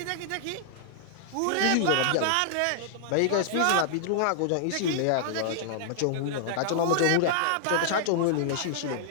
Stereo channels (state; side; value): different; both; correlation -0.01